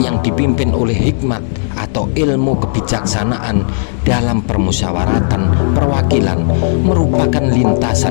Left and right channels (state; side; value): silent; right; digital silence